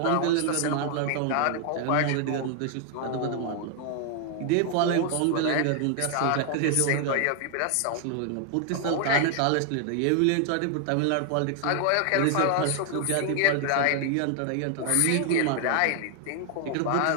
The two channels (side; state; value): both; different; correlation 0.00